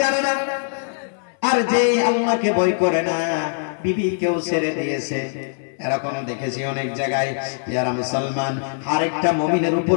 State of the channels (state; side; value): silent; right; 61 dB below the other